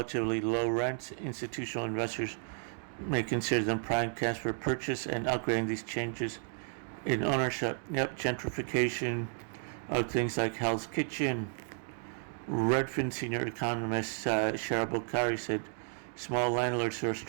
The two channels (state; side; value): silent; left; 55 dB below the other